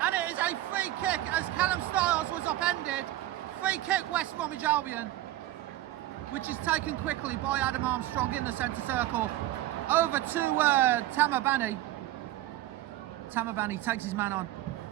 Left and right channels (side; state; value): left; quieter; 14.9 dB